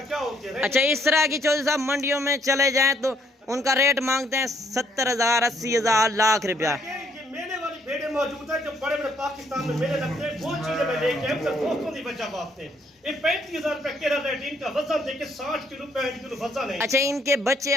क्या होती है। अच्छा, इस तरह की चौधरी साहब मंडियों में चले जाएं तो उनका रेट मांगते हैं 70,000, 80,000, लाख रुपया। ये मेले वाली भेड़े मौजूद है, जो बड़े बड़े पाकिस्तान में मेले लगते हैं, वो चीजें मैं लेके आया, दोस्तों की वजह बात है। ये 35,000 रुपया केरा रेट, इनका वजन देखिए 60 किलो 65 किलो वजन है। अच्छा, इनके बच्चे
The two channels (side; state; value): both; normal; correlation 0.68